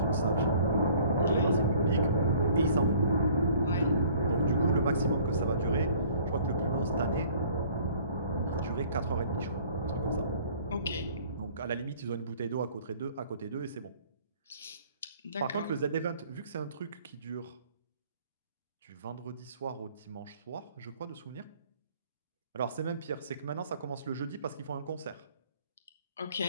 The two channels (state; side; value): inverted; both; correlation -0.54